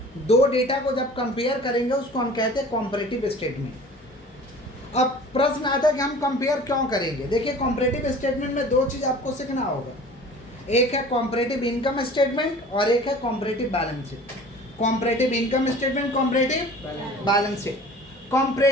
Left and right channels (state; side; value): normal; both; correlation 0.44